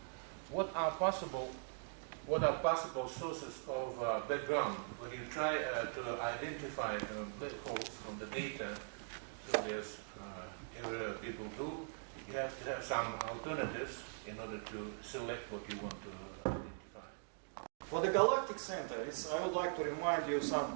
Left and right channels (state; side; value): silent; left; digital silence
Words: What are possible sources of background when you try to identify black holes from the data? So there's every people do. You have to have some alternatives in order to select what you want to identify. For the galactic center, I would like to remind you